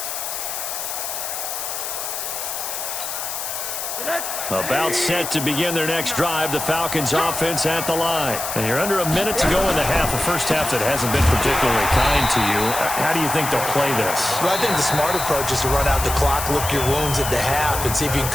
About set to begin their next drive, the Falcons offense at the line. And you're under a minute to go in the half, a first half that hasn't been particularly kind to you. How do you think they'll play this? Well, I think the smart approach is to run out the clock, lick your wounds at the half, and see if you can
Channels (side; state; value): left; noise; hiss, 5 dB below the sound